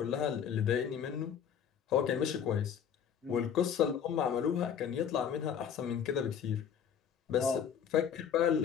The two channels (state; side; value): quieter; right; 8.0 dB